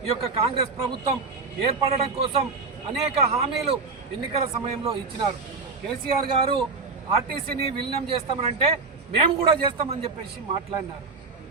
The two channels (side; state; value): left; quieter; 4.2 dB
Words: ఈ యొక్క కాంగ్రెస్ ప్రభుత్వం ఏర్పడడం కోసం అనేక హామీలు ఎన్నికల సమయంలో ఇచ్చినారు. కేసీఆర్ గారు ఆర్టీసీని విలీనం చేస్తామనంటే మేము కూడా చేస్తామని చెప్పేసి మాట్లాడినారు.